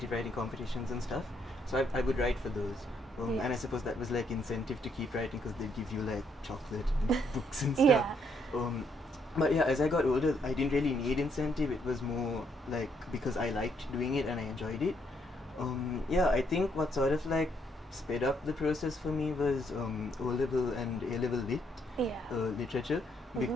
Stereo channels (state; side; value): normal; both; correlation 0.72